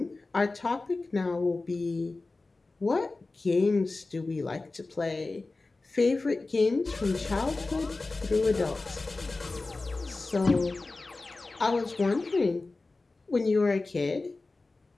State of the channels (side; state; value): right; quieter; 3.4 dB